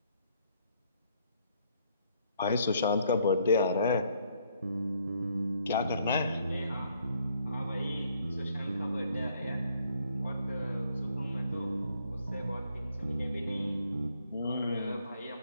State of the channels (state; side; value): inverted; both; correlation -0.68